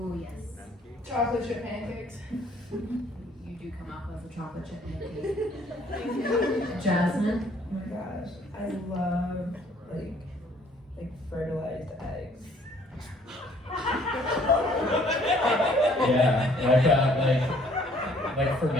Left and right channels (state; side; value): normal; both; correlation 0.60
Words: yes. Chocolate chip pancakes. You do come up with a chocolate chip pancake. Jasmine? Oh my gosh, I love like fertilized eggs. Yeah, like